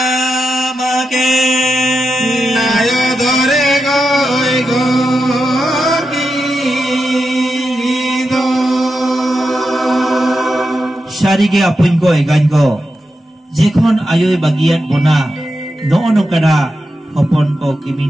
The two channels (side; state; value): both; normal; correlation 0.89